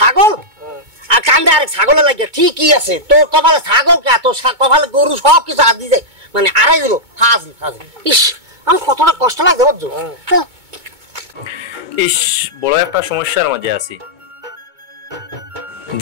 আর কান্দে আরেক ছাগলের লাগে। ঠিকই আছে, তোর কপালে ছাগল কে, তোর কপালে গরু সব কিছু হাত দিয়ে যায়, মানে আড়াই দিল হাজি হাজি। ইস আমার কতটা কষ্ট লাগছে বুঝছো। ইস বড় একটা সমস্যার মাঝে আছি,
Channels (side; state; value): left; late; 2.2 ms